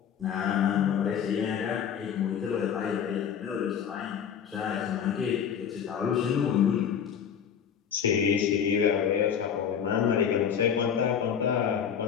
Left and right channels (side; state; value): right; quieter; 8.0 dB